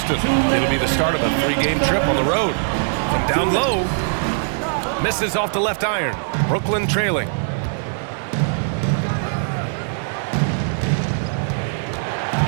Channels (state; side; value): silent; left; digital silence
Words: It'll be the start of a 3-game trip on the road. From down low, misses off the left iron. Brooklyn trailing.